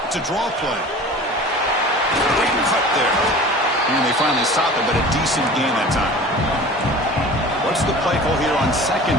It's a draw play. Great cut there. And they finally stop it, but a decent gain that time. What's the play call here on 2nd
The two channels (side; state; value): both; normal; correlation 0.40